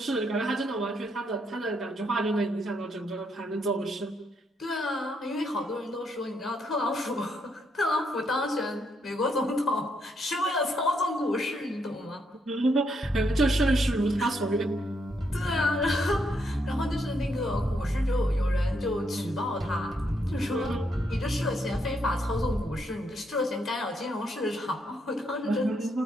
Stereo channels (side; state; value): both; normal; correlation 0.76